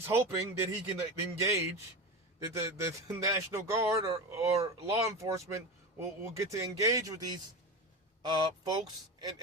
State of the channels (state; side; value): normal; both; correlation 0.23